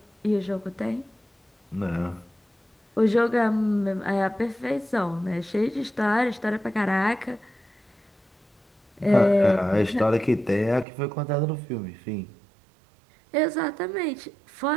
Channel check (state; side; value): drops out; left; at 10.9 s